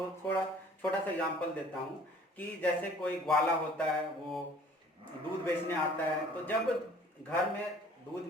छोटा सा एग्जांपल देता हूँ कि जैसे कोई ग्वाला होता है, वो दूध बेचने आता है, तो जब घर में दूध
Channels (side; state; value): both; normal; correlation 0.53